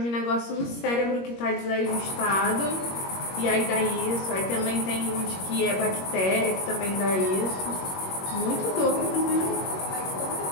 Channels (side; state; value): right; late; 21 ms